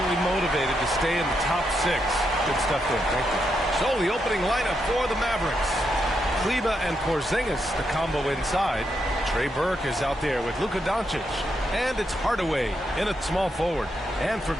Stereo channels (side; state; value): both; normal; correlation 0.81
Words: motivated to stay in the top 6. Good stuff there. Thank you. So the opening lineup for the Mavericks. Kleber and Porzingis, the combo inside. Trey Burke is out there with Luka Doncic. And it's Hardaway in at small forward. And for